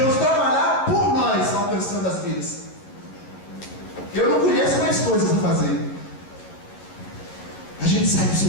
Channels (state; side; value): late; right; 11 ms